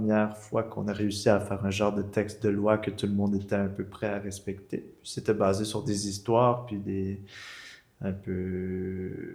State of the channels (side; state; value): both; identical; correlation 1.00